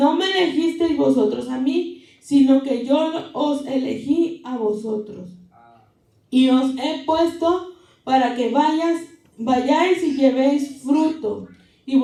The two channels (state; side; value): identical; both; correlation 1.00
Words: me elegisteis vosotros a mí, sino que yo os elegí a vosotros, y os he puesto para que vayáis y llevéis fruto, y